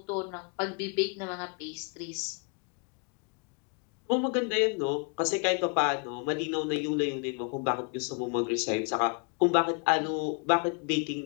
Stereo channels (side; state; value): right; quieter; 35.2 dB